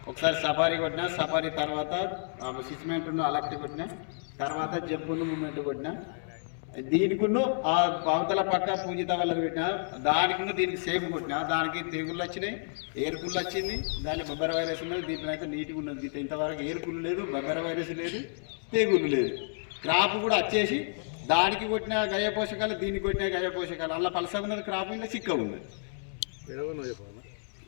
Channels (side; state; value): right; silent; digital silence